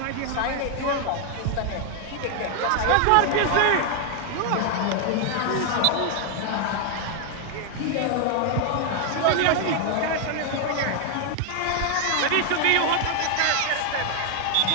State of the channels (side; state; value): both; different; correlation 0.00